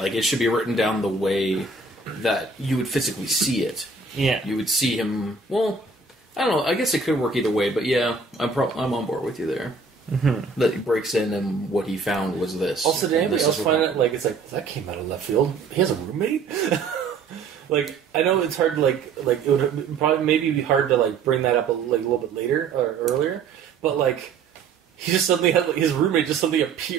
it should be written down the way that you would physically see it. Yeah. You would see him, well, I don't know, I guess it could work either way, but yeah, I'm on board with you there. Mm-hmm. That he breaks in and what he found was this. Also, did anybody else find it, it's like, that came out of left field? He has a roommate? Like, I know it's hard to, it would probably maybe be hard to, bring that up a little bit later, or earlier, but, he just suddenly had, his roommate just suddenly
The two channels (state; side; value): quieter; left; 4.6 dB